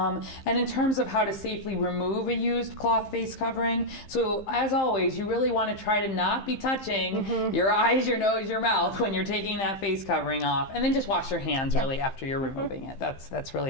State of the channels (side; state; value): right; late; 15 ms